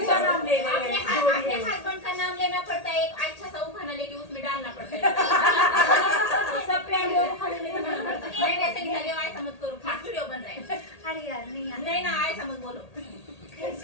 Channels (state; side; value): late; right; 1.8 ms